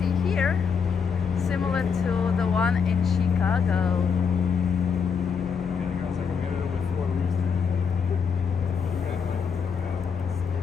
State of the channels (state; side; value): quieter; right; 6.2 dB